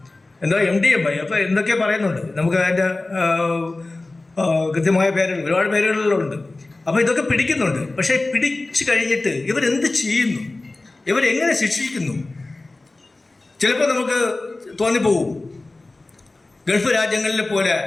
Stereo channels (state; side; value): quieter; right; 3.1 dB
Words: എന്താ MDMA, അപ്പോൾ എന്തൊക്കെ പറയുന്നുണ്ട്, നമുക്ക് അതിൻ്റെ കൃത്യമായ പേരുകൾ, ഒരുപാട് പേരുകളിലുണ്ട്. അപ്പോൾ ഇതൊക്കെ പിടിക്കുന്നുണ്ട്. പക്ഷേ പിടിച്ചു കഴിഞ്ഞിട്ട് ഇവരെന്ത് ചെയ്യുന്നു, ഇവരെങ്ങനെ ശിക്ഷിക്കുന്നു? ചിലപ്പോൾ നമുക്ക് തോന്നിപ്പോവും ഗൾഫ് രാജ്യങ്ങളിലെ പോലെ